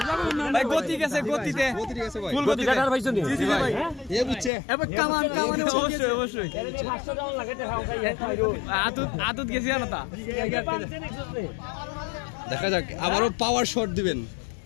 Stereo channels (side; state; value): right; drops out; at 4.5 s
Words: গতি গেছে, গতিতে অবশ্যই আদত গেছি না তা। দেখা যাক, আবারও পাওয়ার শট দিবেন,